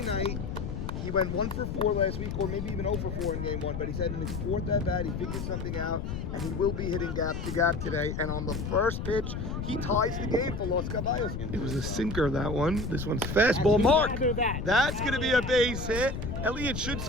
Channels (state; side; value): noise; left; rumble, 5 dB below the sound